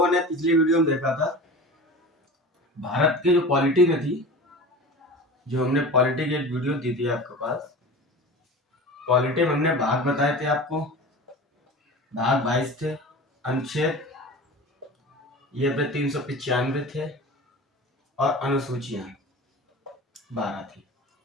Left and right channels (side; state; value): both; normal; correlation 0.34